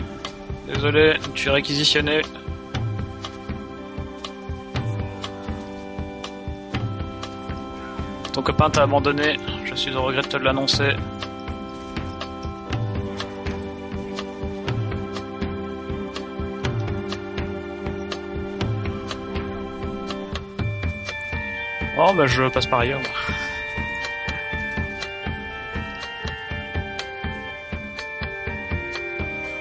désolé, tu es réquisitionné. Ton copain t'a abandonné, je suis au regret de te l'annoncer. Oh bah je passe par ailleurs.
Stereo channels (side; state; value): both; identical; correlation 1.00